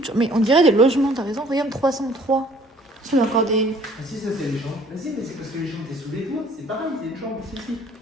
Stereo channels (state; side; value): normal; both; correlation 0.56